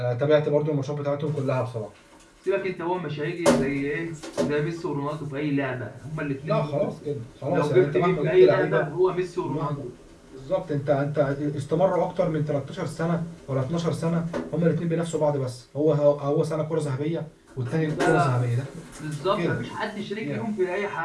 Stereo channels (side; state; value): both; identical; correlation 1.00